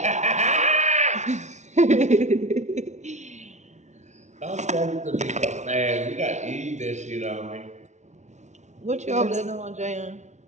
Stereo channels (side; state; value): left; late; 0.33 ms